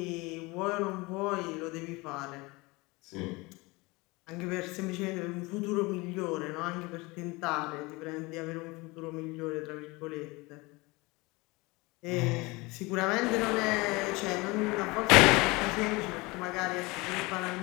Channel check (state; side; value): quieter; right; 24.1 dB